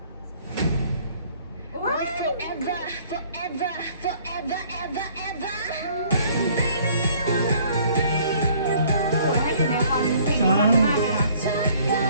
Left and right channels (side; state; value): both; inverted; correlation -0.58